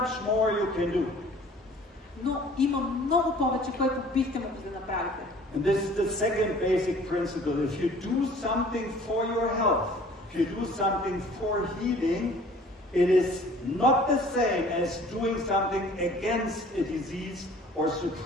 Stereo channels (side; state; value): both; normal; correlation 0.51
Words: more you can do. Но има много повече, което бихте могли да направите. And this is the second basic principle. If you do something for your health, if you do something for healing, it is not the same as doing something against a disease or